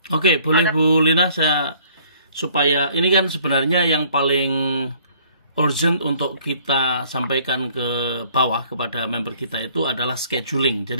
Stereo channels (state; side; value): inverted; both; correlation -0.58